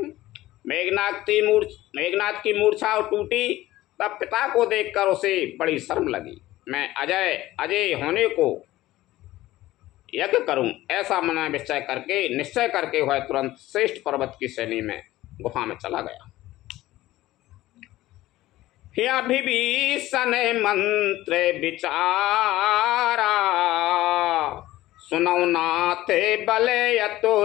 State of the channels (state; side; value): quieter; right; 16.3 dB